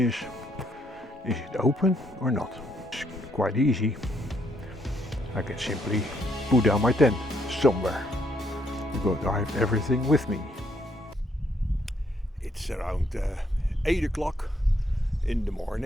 it open or not? It's quite easy. I can simply put down my tent somewhere because I have everything with me. It's around 8 o'clock in the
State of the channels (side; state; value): both; normal; correlation 0.72